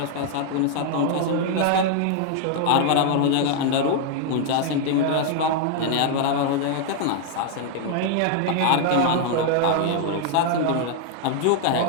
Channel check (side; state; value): both; different; correlation 0.00